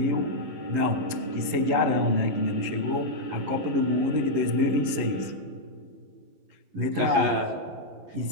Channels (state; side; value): late; left; 11 ms